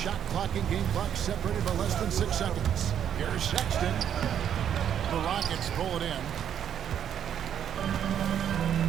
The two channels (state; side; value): quieter; left; 9.2 dB